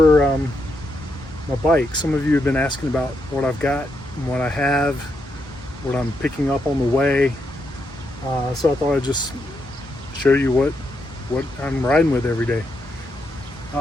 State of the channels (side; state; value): both; normal; correlation 0.81